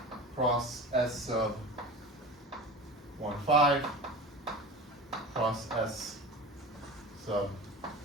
cross S sub 1, 5 cross S sub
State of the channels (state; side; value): normal; both; correlation 0.33